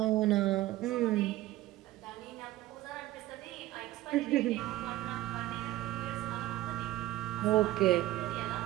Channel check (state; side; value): quieter; left; 15.9 dB